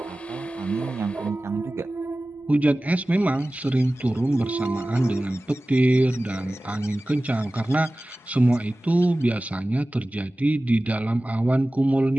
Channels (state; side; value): normal; both; correlation 0.97